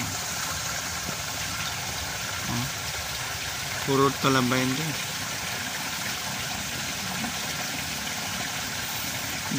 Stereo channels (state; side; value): identical; both; correlation 1.00